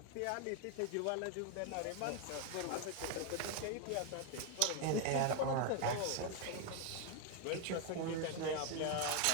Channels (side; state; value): both; different; correlation 0.01